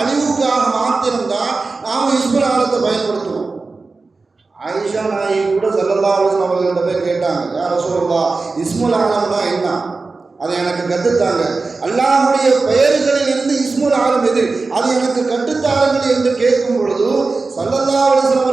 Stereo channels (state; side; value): quieter; left; 3.9 dB